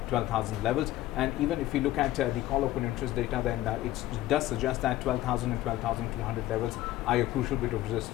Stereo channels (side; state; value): right; quieter; 15.2 dB